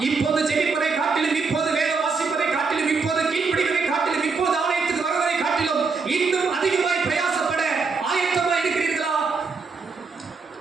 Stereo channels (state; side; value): quieter; left; 4.7 dB